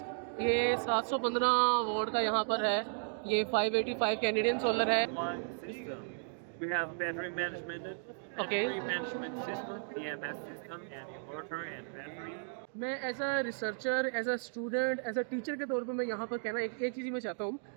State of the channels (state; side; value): silent; left; digital silence